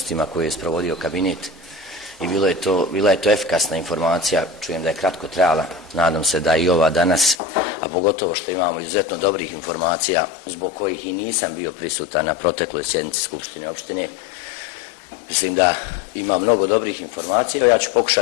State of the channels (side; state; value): right; drops out; at 7.4 s